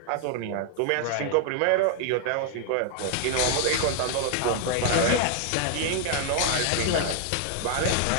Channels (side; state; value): both; different; correlation 0.00